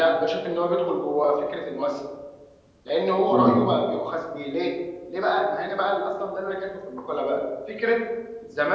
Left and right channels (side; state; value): both; identical; correlation 1.00